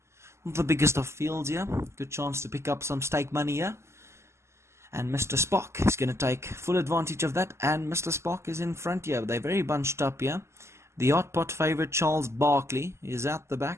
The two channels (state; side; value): late; left; 0.13 ms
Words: Not the biggest of fields here. Good chance to pick up some stake money here. And Mr. Spock is going to take full advantage of that. And Mr. Spock is in front here. They're very bunched up here. The hot pot favourite Charles Barkley is out the